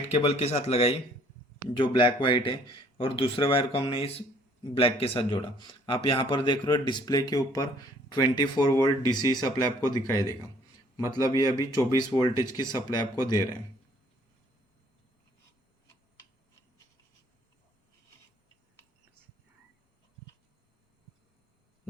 केबल के साथ लगाई जो ब्लैक वाइट है, और दूसरे वायर को हमने इस ब्लैक के साथ जोड़ा। आप यहाँ पर देख रहे हो डिस्प्ले के ऊपर 24 वोल्ट डीसी सप्लाई आपको दिखाई देगा, मतलब ये अभी 24 वोल्टेज की सप्लाई आपको दे रहे हैं।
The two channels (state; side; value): normal; both; correlation 0.59